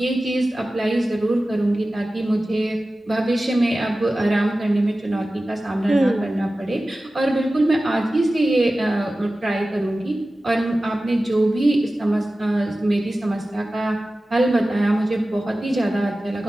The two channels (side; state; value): both; normal; correlation 0.96